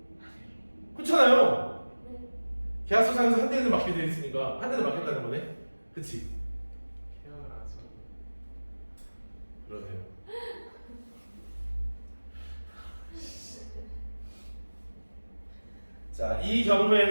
그렇잖아요. 계약서상에서 한 대는 맞게 돼 있으니까 한 대는 맞겠다는 거네? 그치? 계약을 안 써. 그러네요. 자, 이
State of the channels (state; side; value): inverted; both; correlation -1.00